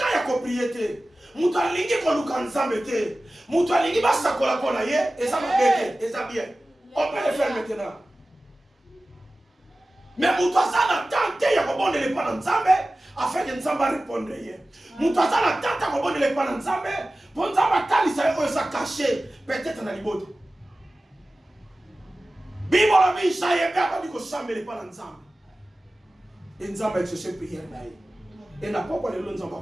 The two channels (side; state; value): both; normal; correlation 0.96